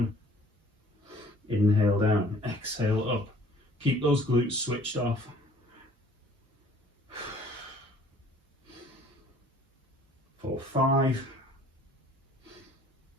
Inhale down, exhale up. Keep those glutes switched off. For 5,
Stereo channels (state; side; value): normal; both; correlation 0.55